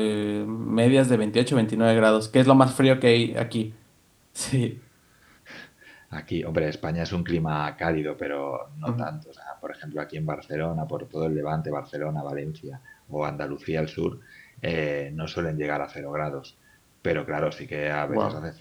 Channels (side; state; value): both; identical; correlation 1.00